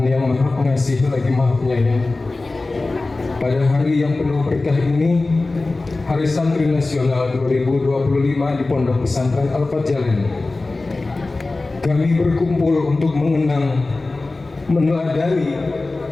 yang Maha Pengasih lagi Maha Penyayang, pada hari yang penuh berkah ini, Hari Santri Nasional 2025 di Pondok Pesantren Al-Fajjalain, kami berkumpul untuk mengenang, meneladani,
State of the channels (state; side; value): quieter; right; 3.3 dB